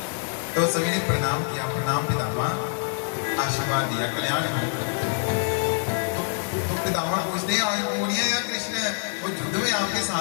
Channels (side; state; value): right; silent; digital silence